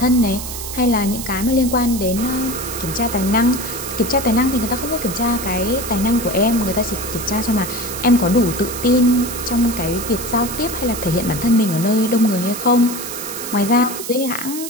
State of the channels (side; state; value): right; noise; hiss, 8 dB below the sound